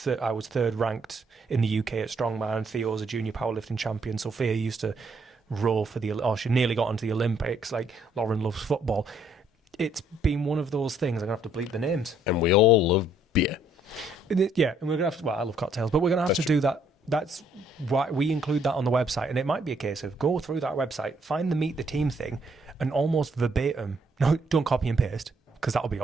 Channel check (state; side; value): normal; both; correlation 0.68